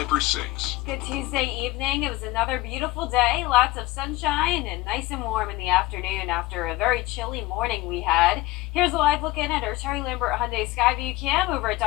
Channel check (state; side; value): quieter; right; 19.2 dB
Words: 6. Good Tuesday evening. It was another beautiful day. Lots of sunshine and nice and warm in the afternoon after a very chilly morning we had. Here's a live look in at our Terry Lambert Hyundai Skyview cam over at